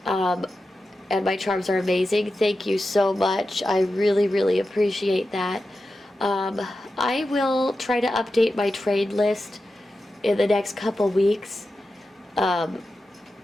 and my charms are amazing. Thank you so much. I really, really appreciate that. I will try to update my trade list in the next couple weeks.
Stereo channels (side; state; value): both; normal; correlation 0.91